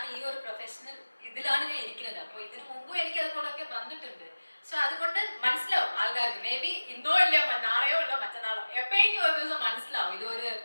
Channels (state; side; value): inverted; both; correlation -1.00